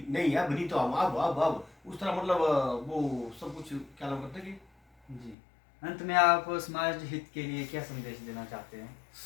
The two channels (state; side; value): drops out; right; at 5.4 s